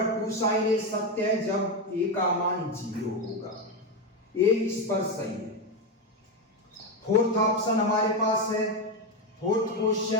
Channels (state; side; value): normal; both; correlation 0.11